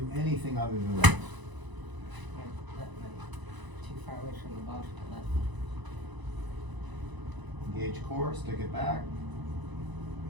anything other than that. Too far away from the ball for the left. Engage core, stick it back,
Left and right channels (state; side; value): late; left; 1.0 ms